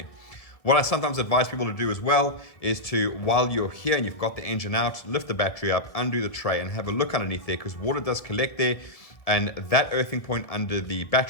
What I sometimes advise people to do as well is to, while you're here and you've got the engine out, lift the battery up, undo the tray and have a look underneath there, because water does collect there. And that earthing point under the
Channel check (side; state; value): right; late; 1.7 ms